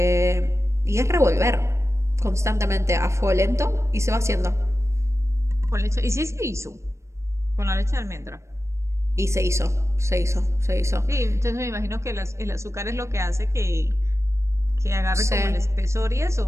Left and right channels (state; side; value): late; left; 0.14 ms